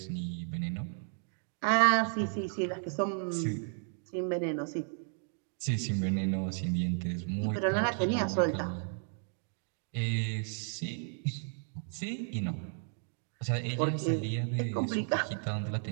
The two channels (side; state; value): left; silent; 55 dB below the other